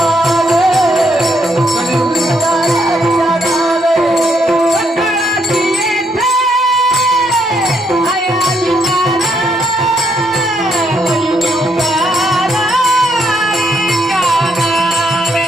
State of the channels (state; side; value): normal; both; correlation 0.74